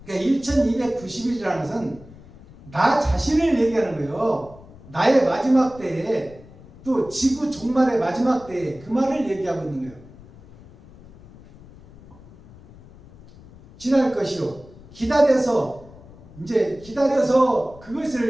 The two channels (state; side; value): noise; left; rumble, 21 dB below the sound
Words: 그러니까 1290일이라는 것은 나 자신을 얘기하는 거예요. 나의 마지막 때에, 또 지구 종말의 마지막 때에 그 말을 얘기하고 있는 거예요. 지날 것이요, 기다려서, 이제 기다려서,